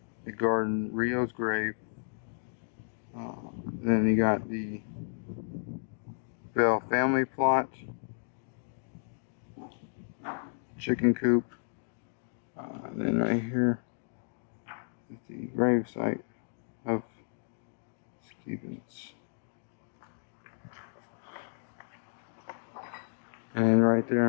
the garden, Rio's grave. Then you got the Bell family plot, chicken coop, and then right here is the grave site of Stevens. And then right there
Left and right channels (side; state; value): right; silent; digital silence